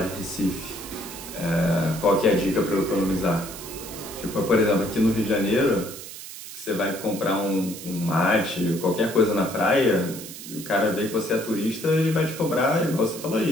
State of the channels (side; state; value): right; noise; hiss, 12 dB below the sound